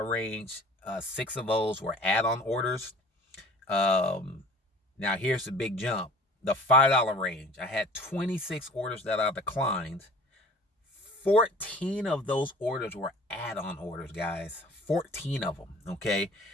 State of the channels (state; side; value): normal; both; correlation 0.45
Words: range. 6 of those were add-on orders. Now here's the big jump. The $5 range, I had 26 orders that I declined. 14 of those orders were add-on orders, guys. 14 of them, okay?